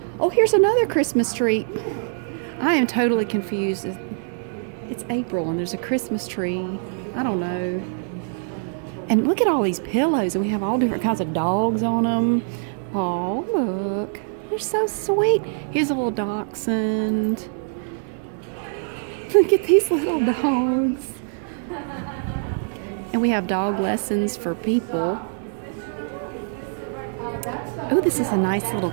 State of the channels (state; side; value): silent; left; digital silence